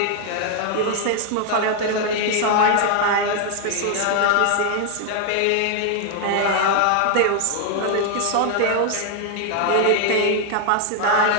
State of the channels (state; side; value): different; both; correlation 0.00